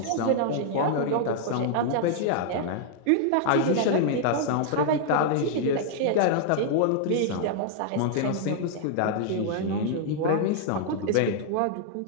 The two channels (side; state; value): both; different; correlation -0.01